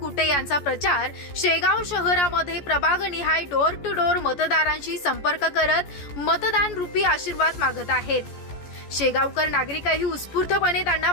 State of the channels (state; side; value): late; right; 14 ms